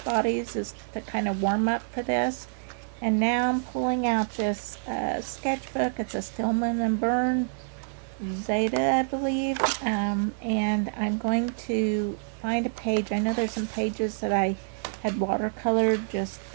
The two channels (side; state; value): left; silent; digital silence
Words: as to kind of warm up for this. And now I'm pulling out this sketchbook. It's a Stillman and Burn Zeta, I believe, and I'm going to find a page. I know there's some pages that I had watercolored, just